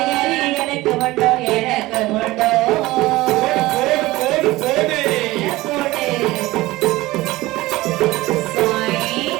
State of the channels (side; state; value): left; quieter; 18.9 dB